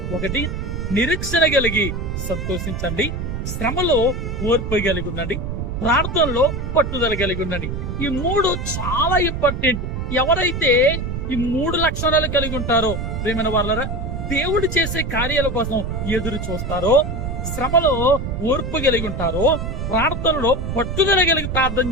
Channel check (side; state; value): right; noise; rumble, 4 dB below the sound